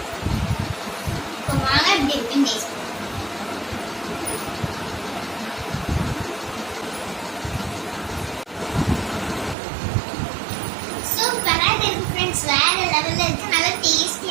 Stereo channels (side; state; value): left; drops out; at 9.6 s